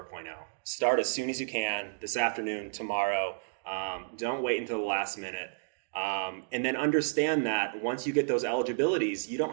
Start as soon as you can, this afternoon, tomorrow. Don't wait until the last minute. And then understand that once you get those eligibilities, you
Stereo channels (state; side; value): silent; left; digital silence